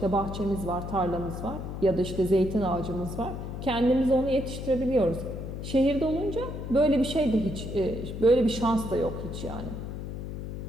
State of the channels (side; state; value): left; noise; hum, 7 dB below the sound